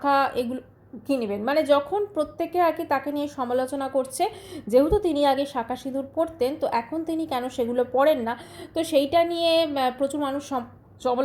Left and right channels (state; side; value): identical; both; correlation 1.00